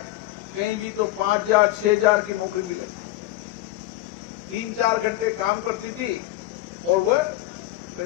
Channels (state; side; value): quieter; right; 16.0 dB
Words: कहीं भी तो 5,000, 6,000 की नौकरी मिले। 3-4 घंटे काम करती थी और वह